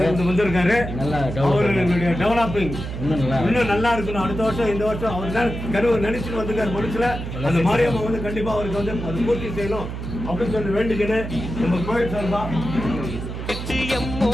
வந்திருக்காரு. அவர்களுடைய டெவலப்பிங் இன்னும் நல்லா இருக்கணும். அடுத்த வருஷம் இந்த வருஷம் அவர் தான் கருவு நினைச்சுட்டு வந்திருக்காரு. மனுஷல அந்த மாரியம்மா வந்து கண்டிப்பா அவருக்கு வந்து அது பூர்த்தி செய்யணும் அப்படின்னு சொல்லி வேண்டிக்கின்னு நம்ம கோயில் சார்பா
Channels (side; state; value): right; noise; hum, 7 dB below the sound